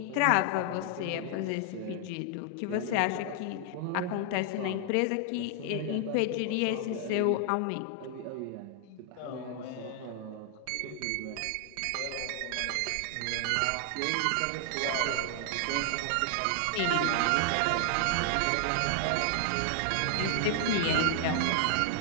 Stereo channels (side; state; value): both; different; correlation 0.00